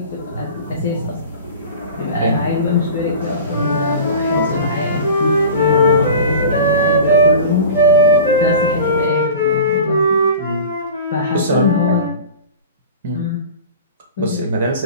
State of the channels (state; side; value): inverted; both; correlation -0.37